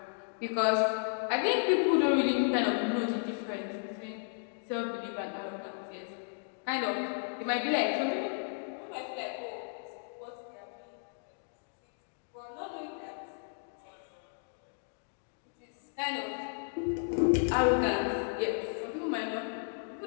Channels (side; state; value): right; silent; digital silence